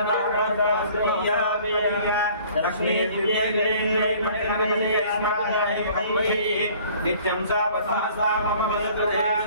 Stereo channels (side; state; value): both; inverted; correlation -0.53